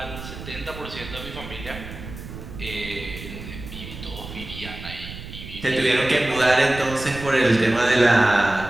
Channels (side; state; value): right; noise; rumble, 12 dB below the sound